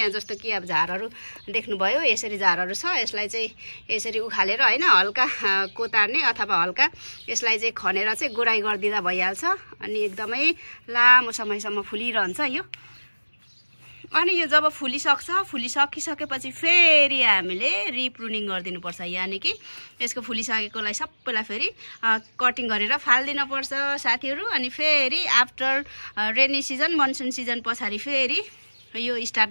जस्तो कि अब झारहरू देख्नुभयो, यसरी झारहरू छ, यसलाई चाहिँ यसरी उखालेर हैन हल्का कोतार्ने अथवा हल्का यसलाई चाहिँ खनेर चाहिँ गोराई गरिदिँदा भइहाल्छ। अनि एकदमै लामो समयसम्म फुलिरहन्छ यो। अनि यो जब फुलिसकिसकेपछि फेरि हामीले रिप्रुनिङ गरिदिनुपर्छ, यानी कि यसको फुलिसकेकोलाई सबैलाई फेरि कटिङ गरेर फाल्दिनु पर्छ साथीहरु। अनि फेरि after rainy season, monsoon season पछाडि फेरि यो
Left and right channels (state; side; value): inverted; both; correlation -1.00